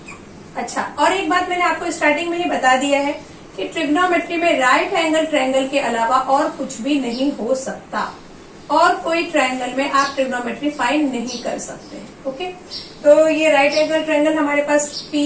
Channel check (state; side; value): identical; both; correlation 1.00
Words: अच्छा, और एक बात मैंने आपको स्टार्टिंग में ही बता दिया है कि ट्रिग्नोमेट्री में राइट एंगल ट्रायंगल के अलावा और कुछ भी नहीं हो सकता और कोई ट्रायंगल में आप ट्रिग्नोमेट्री फाइंड नहीं कर सकते। ओके, तो ये राइट एंगल ट्रायंगल हमारे पास P